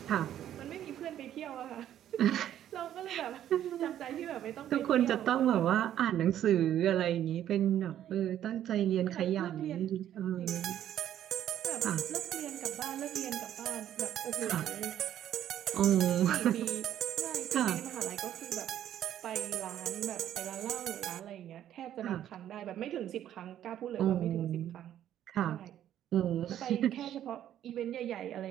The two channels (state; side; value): quieter; left; 11.2 dB